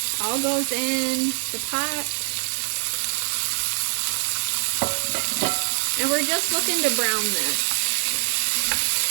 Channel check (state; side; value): silent; left; digital silence